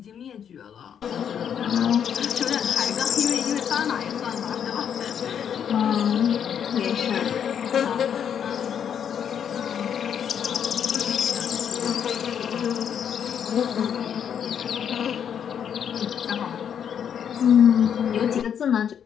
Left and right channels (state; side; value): quieter; right; 8.4 dB